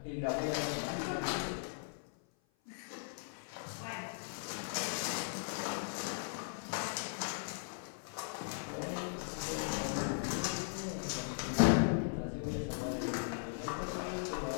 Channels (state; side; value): silent; right; 52 dB below the other